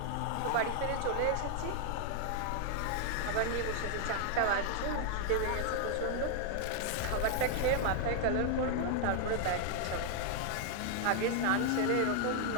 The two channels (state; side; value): different; both; correlation 0.00